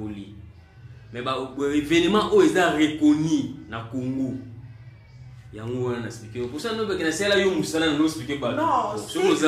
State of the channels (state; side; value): identical; both; correlation 1.00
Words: mais ba événement o eza reconnu na Congo yango wana expliquer pour ça no be kana sala yo musala no expliquer ba non so